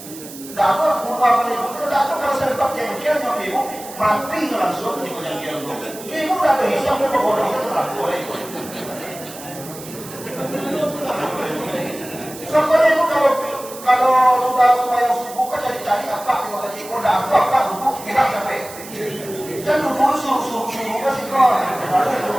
dapat bunuh ibu itu dapat kalau saya dapat jengkel yang ibu mati langsung di jengkel itu. Ibu udah berhisap ibu bodoh itu laku itu. Sampai ibu kalau sudah yang subuh kan jadi cari apa kalau tadi ibu udah apa duduk kita sampai kan duduk suruh kan sih kok ada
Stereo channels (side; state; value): right; noise; hiss, 15 dB below the sound